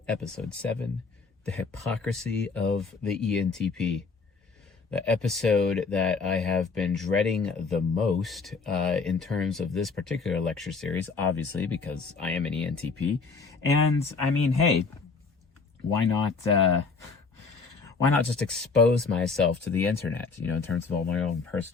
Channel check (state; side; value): quieter; right; 4.6 dB